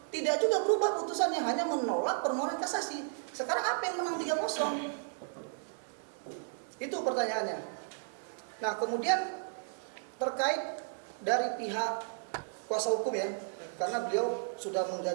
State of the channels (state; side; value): silent; left; digital silence